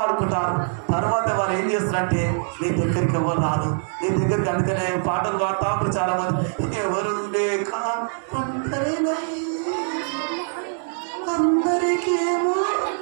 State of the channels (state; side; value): silent; left; digital silence